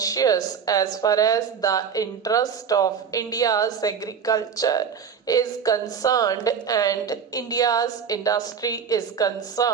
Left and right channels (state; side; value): quieter; left; 6.9 dB